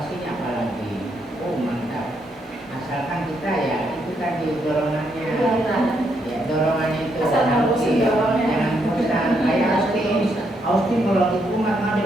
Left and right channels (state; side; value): normal; both; correlation 0.77